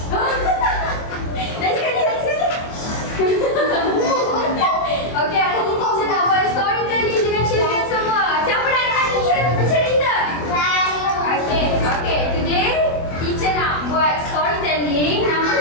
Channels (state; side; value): late; right; 24 ms